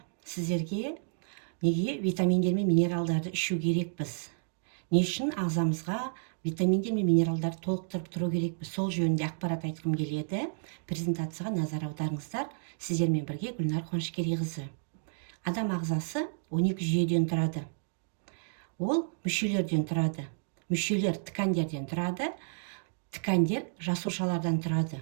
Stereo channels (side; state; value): left; silent; digital silence